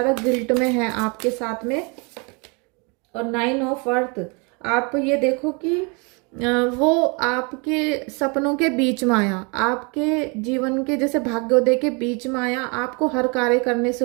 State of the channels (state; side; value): quieter; left; 31.8 dB